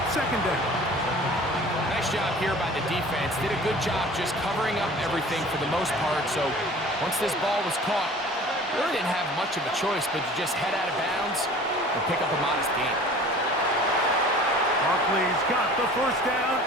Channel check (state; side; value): normal; both; correlation 0.45